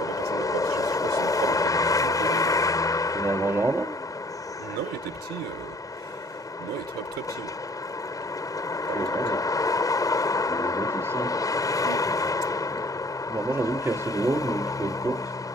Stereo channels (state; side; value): normal; both; correlation 0.55